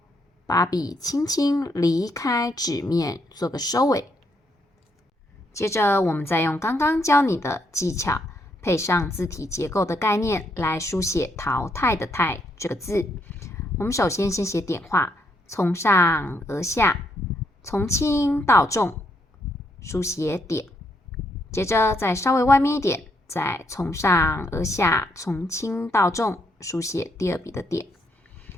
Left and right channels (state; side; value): normal; both; correlation 0.75